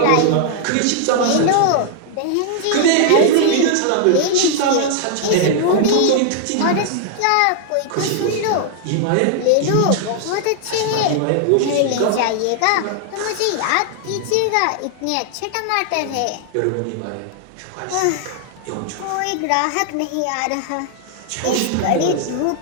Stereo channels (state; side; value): different; both; correlation 0.00